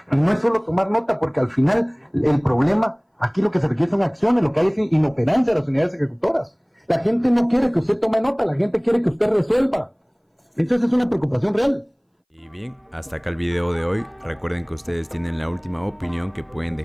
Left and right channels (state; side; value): identical; both; correlation 1.00